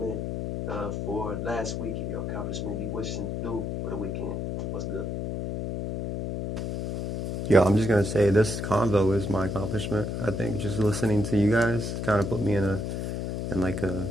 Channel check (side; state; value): left; noise; hum, 3 dB below the sound